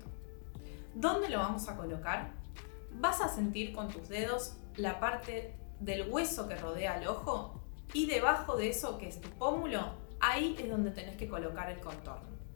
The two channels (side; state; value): right; silent; digital silence